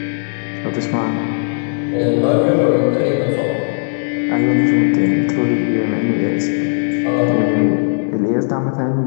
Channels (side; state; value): right; silent; digital silence